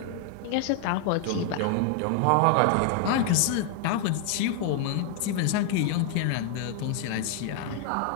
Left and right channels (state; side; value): different; both; correlation 0.00